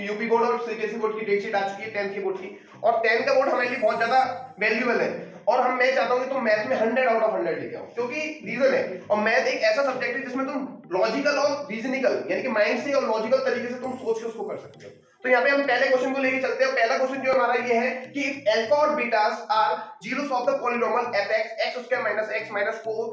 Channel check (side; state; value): both; identical; correlation 1.00